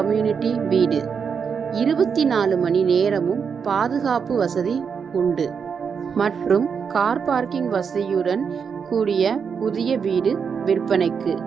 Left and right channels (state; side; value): quieter; left; 6.4 dB